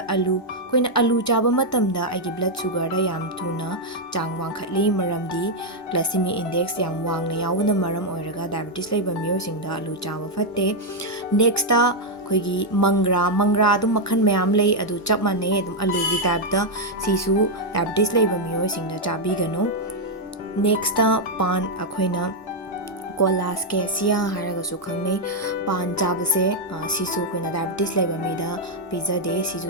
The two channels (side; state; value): both; normal; correlation -0.01